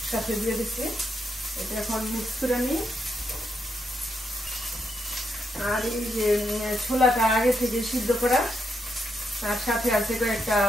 দিয়ে দিচ্ছি। এটা এখন মিক্স করে নিই। আর এই যে ছোলাটা আগে থেকে সিদ্ধ করা, আর সাথে আছে কয়েকটা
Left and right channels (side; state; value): both; normal; correlation 0.81